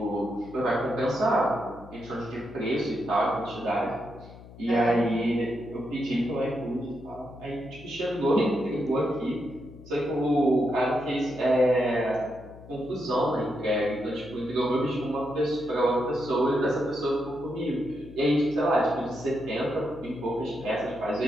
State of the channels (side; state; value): left; noise; hum, 18 dB below the sound